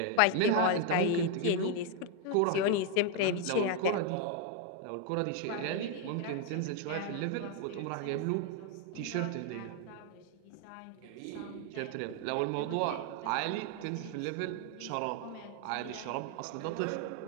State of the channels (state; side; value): different; both; correlation 0.01